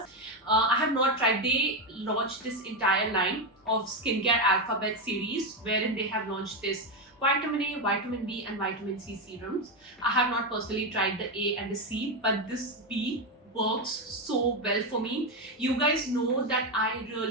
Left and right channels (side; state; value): both; normal; correlation 0.09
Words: I have not tried. They launched this entire line of skincare alphabet series wherein they have launched this vitamin A, vitamin B and vitamin C serums. I have not personally tried the A and the C, but this B works so well for me. You guys know that I